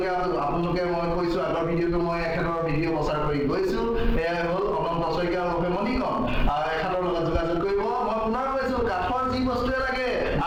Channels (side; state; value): both; identical; correlation 1.00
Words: আপোনালোকে মই কৈছো আগৰ ভিডিঅ'টো মই এখেতৰ ভিডিঅ' প্ৰচাৰ কৰি গৈছো এয়াই হ'ল অনন্ত শইকীয়া আৰু মণিকণ এখেতৰ লগত যোগাযোগ কৰিব মই পুনৰ কৈছো কাঠৰ যি বস্তুৱে লাগে